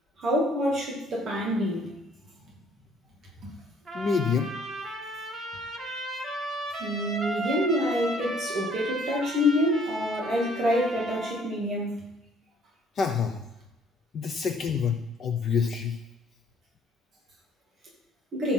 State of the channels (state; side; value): normal; both; correlation 0.60